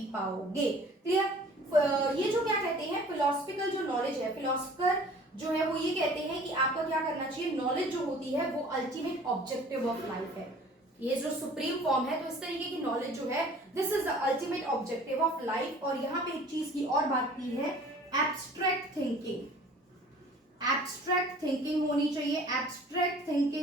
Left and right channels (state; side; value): normal; both; correlation 0.49